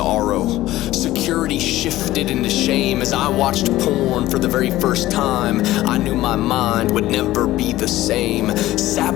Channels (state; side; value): quieter; right; 15.8 dB